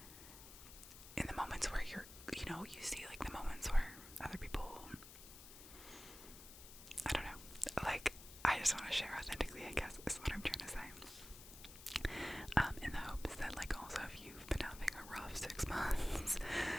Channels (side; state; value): left; noise; hiss, 15 dB below the sound